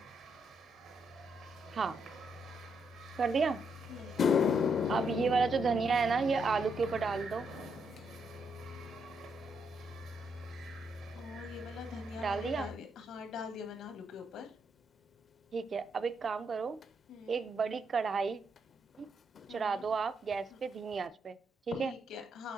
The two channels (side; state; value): both; normal; correlation 0.77